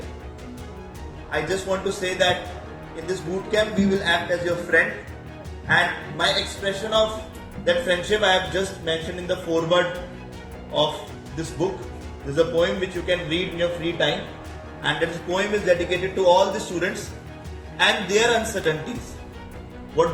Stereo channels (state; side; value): identical; both; correlation 1.00